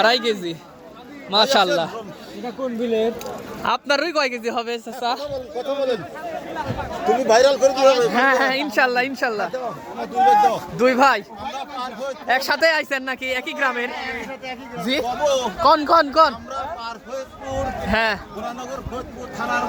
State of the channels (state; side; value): identical; both; correlation 1.00